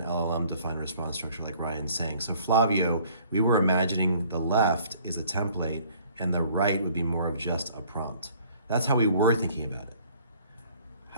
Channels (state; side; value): inverted; both; correlation -0.57